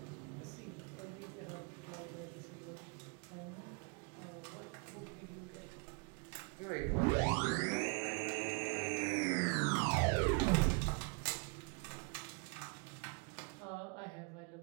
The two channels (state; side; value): quieter; left; 35.7 dB